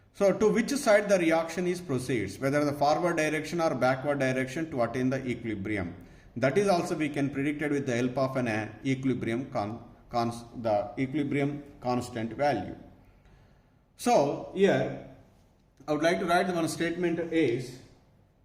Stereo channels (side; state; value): both; identical; correlation 1.00